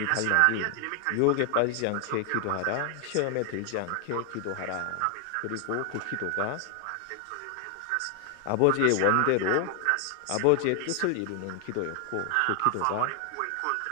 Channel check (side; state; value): both; different; correlation 0.00